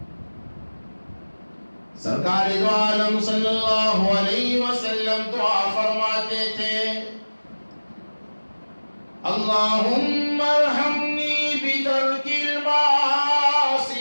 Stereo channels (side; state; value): both; inverted; correlation -1.00